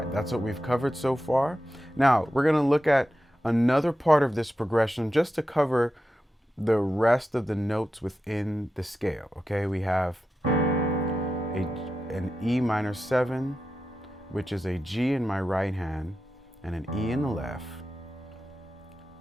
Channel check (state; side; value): normal; both; correlation 0.91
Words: that's what we've covered so far. Now, we're gonna look at another part of this progression just to cover the rest of the notes within the scale. Okay, we have an E minor 7, which is a G in my right hand and an E in the left,